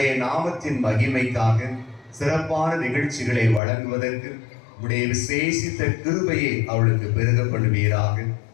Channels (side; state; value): right; drops out; at 3.6 s